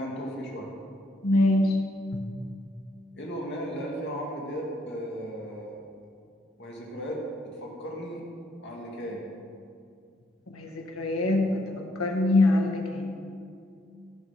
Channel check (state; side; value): normal; both; correlation 0.72